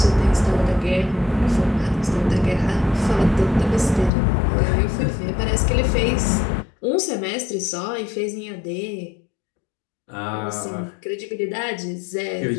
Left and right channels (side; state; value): right; drops out; at 4.1 s